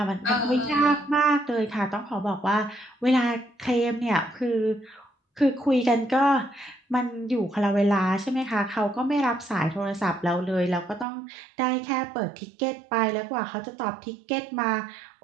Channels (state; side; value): drops out; left; at 11.1 s